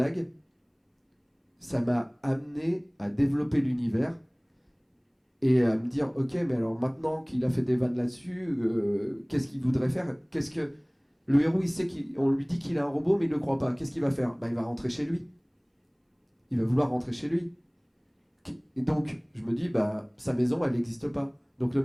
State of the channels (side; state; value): both; identical; correlation 1.00